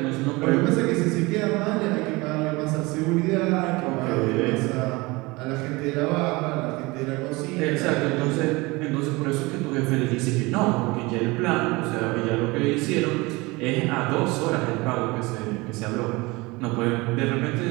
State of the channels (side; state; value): left; quieter; 23.5 dB